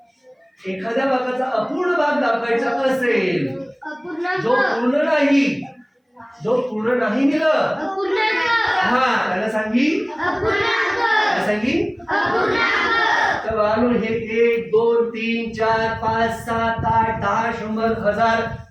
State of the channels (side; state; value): both; identical; correlation 1.00